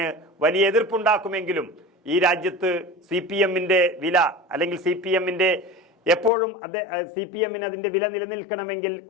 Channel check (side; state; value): right; drops out; at 6.3 s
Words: വലിയ എതിർപ്പുണ്ടാക്കുമെങ്കിലും ഈ രാജ്യത്ത് CPMന്റെ വില, അല്ലെങ്കിൽ CPMന്റെ എപ്പോഴും CPMന് അതിന്റെ വില നിലനിൽക്കണമെങ്കിൽ